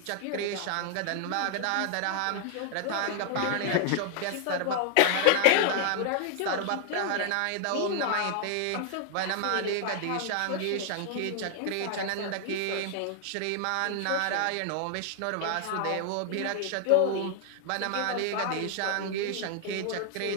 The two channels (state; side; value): different; both; correlation 0.00